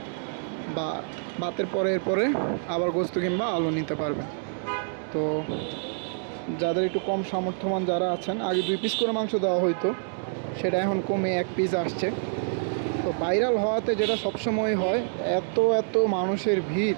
বা ভাতের পরে আবার গোস্ত কিংবা আলু নিতে পারবেন। তো যাদের একটু কম সামর্থ্যবান যারা আছেন, আগে 2 পিস করে মাংস দেওয়া হইতো, সেটা এখন কমে 1 পিস আসছে। তো ভাইরাল হওয়াতে যেটা সবসময় হয়, এত এত মানুষের ভিড়,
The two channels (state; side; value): silent; left; digital silence